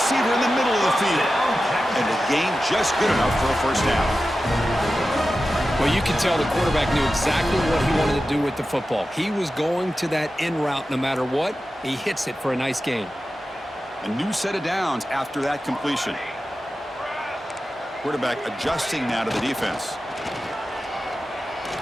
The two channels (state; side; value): normal; both; correlation 0.93